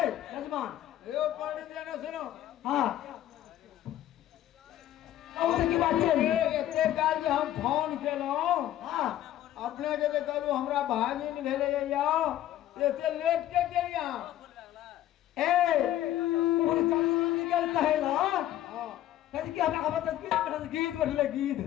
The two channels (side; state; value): right; quieter; 12.9 dB